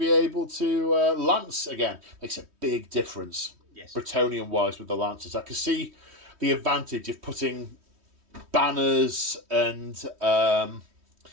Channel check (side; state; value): left; late; 3.1 ms